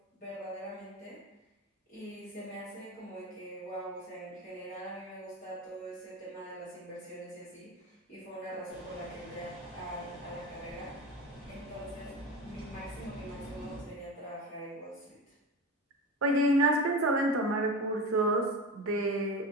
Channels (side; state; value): both; normal; correlation 0.27